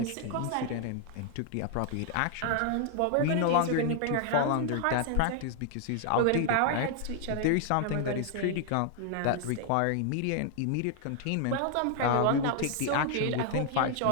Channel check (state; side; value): different; both; correlation 0.00